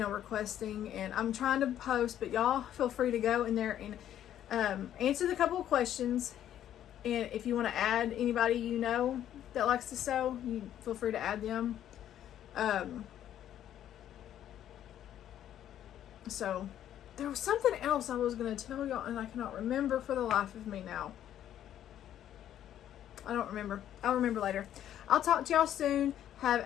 and I'm trying to post, but y'all feel free to go in there and answer the couple of questions. And if you want to add anybody you know that likes to sew, you feel free to add them. So there was something else I was going to tell y'all, and I cannot remember for the life of me now. I don't remember. I'll remember later. I'll talk to y'all soon. Have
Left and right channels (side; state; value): right; quieter; 11.1 dB